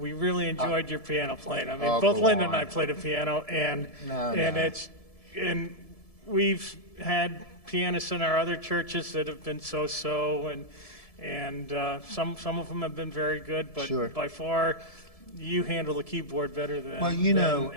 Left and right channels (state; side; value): late; right; 1.7 ms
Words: really enjoyed your piano playing. I mean, both Linda and I played the piano, and we've had pianists in our other churches that have been so-so, and some of them have been very good, but by far you handle the keyboard better than